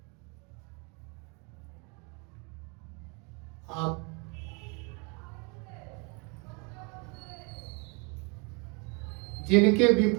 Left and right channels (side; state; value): left; quieter; 32.4 dB